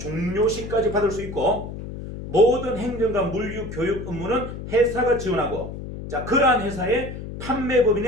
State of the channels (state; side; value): noise; left; hum, 9 dB below the sound